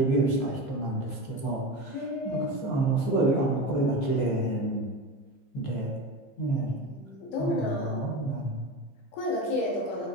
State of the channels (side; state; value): right; late; 15 ms